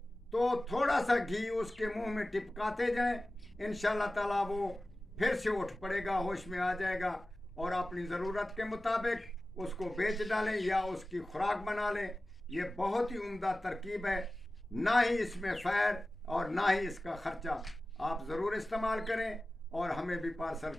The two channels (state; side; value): normal; both; correlation 0.96